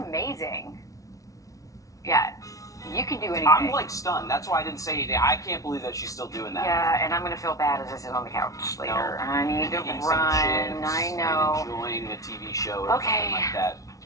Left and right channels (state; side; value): late; right; 0.17 ms